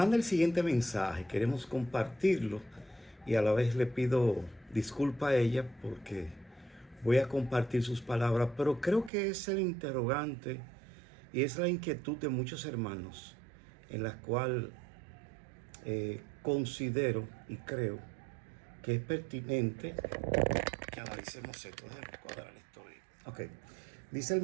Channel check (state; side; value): drops out; left; at 9.1 s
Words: el siguiente mensaje. Queremos compartirlo y a la vez le pido disculpa a ella porque voy a compartir sus palabras, pero creo que es el interrogante y es la inquietud de muchos hermanos en la cual considero y creo que es pertinente que analicemos esto. Déjame cuadrar esto ahí. Ok. Dice el